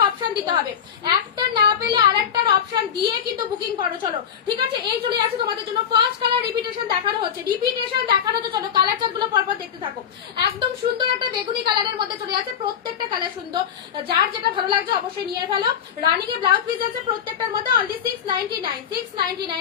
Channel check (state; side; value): quieter; right; 8.4 dB